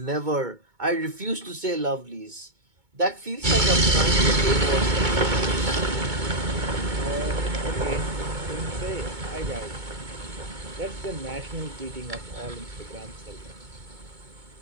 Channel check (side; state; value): left; late; 2.2 ms